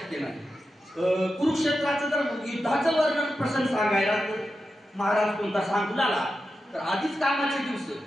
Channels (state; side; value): normal; both; correlation 0.90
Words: नाही. कुरुक्षेत्राचं जर युद्धाचं वर्णन प्रसंग सांगायला तर महाराज कोणता सांगू लागला तर आधीच कामाचे दिवस